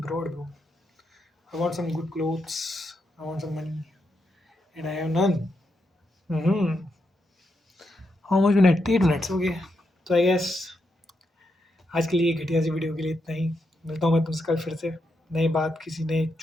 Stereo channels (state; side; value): normal; both; correlation 0.83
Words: broad, bro. I want some good clothes, I want some money, and I have none. Mm-hmm. How much minute? 8 minutes, okay. तो आई गेस आज के लिए घटिया सी वीडियो के लिए इतना ही। मिलता हूँ मैं तुमसे कल फिर से नई बात, किसी नए